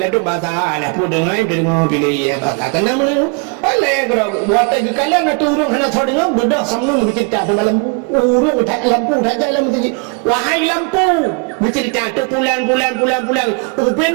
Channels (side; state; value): left; quieter; 33.9 dB